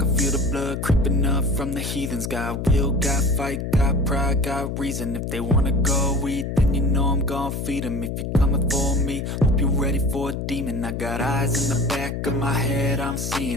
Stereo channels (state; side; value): noise; left; hum, 4 dB below the sound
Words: feel the blood creeping up from the heathens. Got will, got fight, got pride, got reason. If they wanna go eat, then you know I'm gon' feed them. If you're coming for me, hope you're ready for a demon. I got eyes in the back of my head, I'm